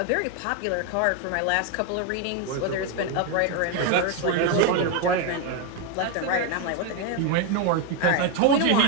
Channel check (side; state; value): both; different; correlation 0.02